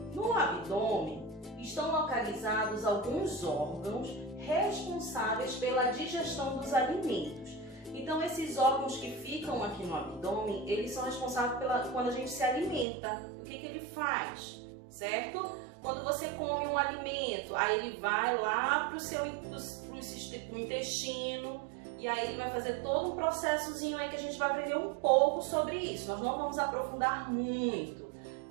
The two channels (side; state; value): left; drops out; at 12.9 s